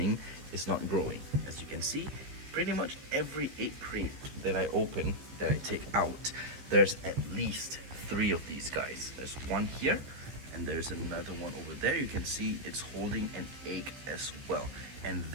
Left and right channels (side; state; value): left; late; 15 ms